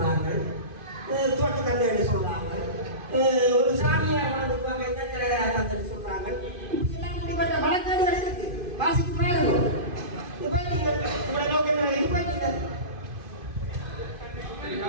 தோட்ட தந்தை சொல்றாங்க, ஒரு சாமியார் வளர்ந்துக்குவாங்க, இந்த தந்தை சொல்றாங்க. இப்படிலாம் இப்படிப்பட்ட வழக்கேடுகள் இருக்கு. வாசிக்கு பாருங்க. இப்ப உங்களோட நோக்கம் இப்ப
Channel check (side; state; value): left; late; 2.5 ms